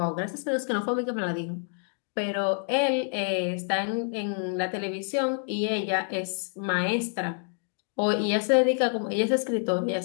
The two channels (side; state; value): right; silent; 60 dB below the other